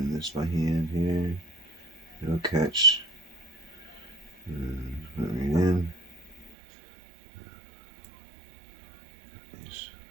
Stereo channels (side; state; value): left; drops out; at 6.6 s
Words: this by hand here. It'll catch. And put it right in.